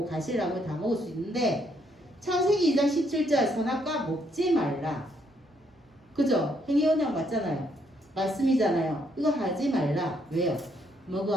가시나무를 다 먹을 수 있는데 창세기 2장 17절 선악과 먹지 말라. 그죠? 행위 언약 맞잖아요. 말씀이잖아요. 이거 하지 말라. 왜요?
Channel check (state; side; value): normal; both; correlation 0.72